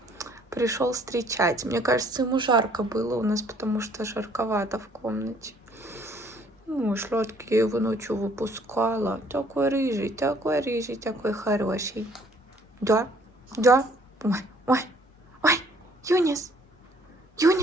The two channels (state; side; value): normal; both; correlation 0.60